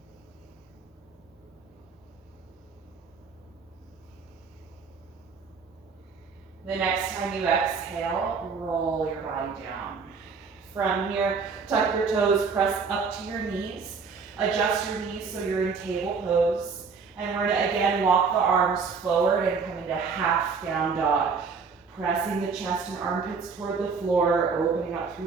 The next time you exhale, roll your body down. From here, tuck your toes, press up to your knees. Adjust your knees so you're in table pose. And we're gonna again walk the arms forward and come into half down dog. Pressing the chest and armpits toward the floor, opening up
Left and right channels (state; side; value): quieter; left; 5.2 dB